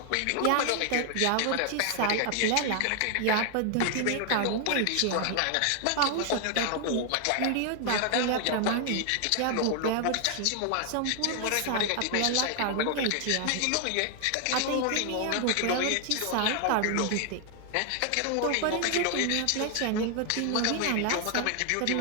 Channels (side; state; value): both; different; correlation 0.00